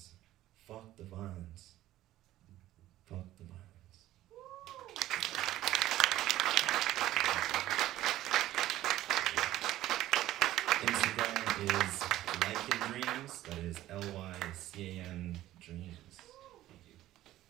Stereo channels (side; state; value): left; quieter; 14.5 dB